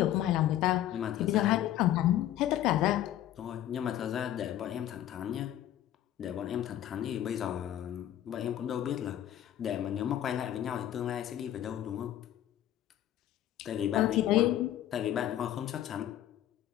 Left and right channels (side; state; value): right; quieter; 12.1 dB